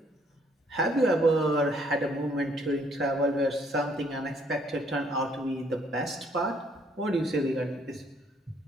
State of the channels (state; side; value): normal; both; correlation 0.66